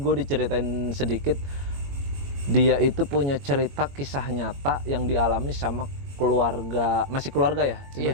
diceritain sedikit. Dia itu punya cerita kisah nyata yang dialami sama keluarga, masih keluarga ya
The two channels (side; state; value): left; late; 22 ms